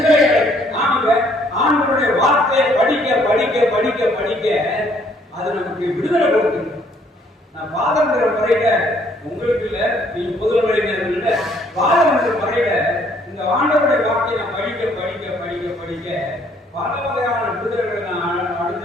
ஆண்டவருடைய வார்த்தையை படிக்க படிக்க படிக்க படிக்க அது நமக்கு விடுதலை கொடுக்குது. நான் பாதங்கிற முறையில உங்களுக்கு இல்ல, நீங்க புதுமையினர் இல்ல, பாதங்கிற முறையில இந்த ஆண்டவருடைய வார்த்தையை நான் படிக்க படிக்க படிக்க படிக்க பல வகையான விடுதலைகளை நான்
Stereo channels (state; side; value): normal; both; correlation 0.64